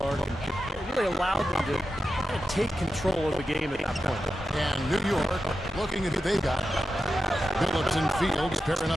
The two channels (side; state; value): both; normal; correlation 0.91